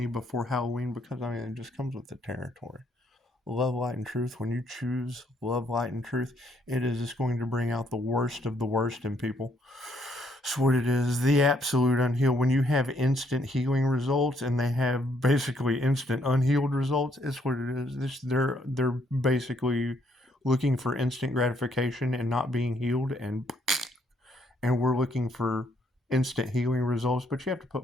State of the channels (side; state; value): both; normal; correlation 0.70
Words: before Halloween, because I mean it just comes with the territory. Love, light, and truth. When you choose love, light, and truth, it is just going to bring out the worst of the worst in people. It's what it is. The absolute unhealed. When you have instant healing results and they have basically instant unhealed results, it's what it is. They're basically looking for instant gratification and not being healed, and we're looking for instant healing results. But you have to